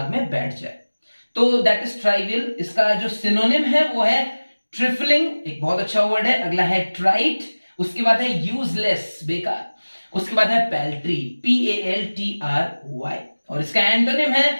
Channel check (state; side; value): inverted; both; correlation -1.00